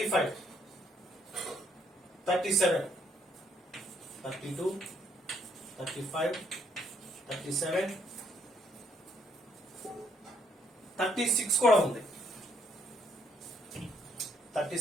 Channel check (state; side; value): normal; both; correlation 0.69